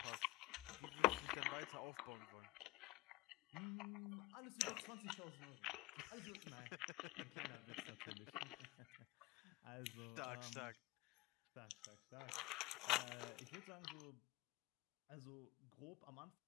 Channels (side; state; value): right; quieter; 19.1 dB